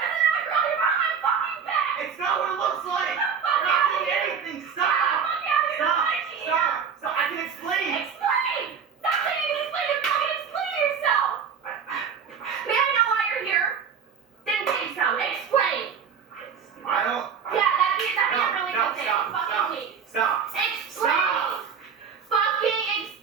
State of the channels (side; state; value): left; quieter; 6.7 dB